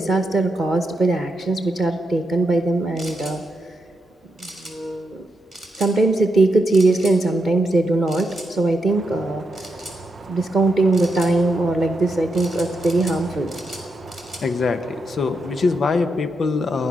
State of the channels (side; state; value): both; normal; correlation 0.83